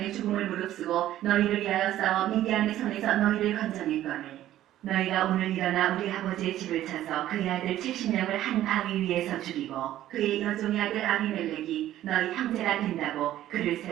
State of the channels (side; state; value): left; quieter; 13.2 dB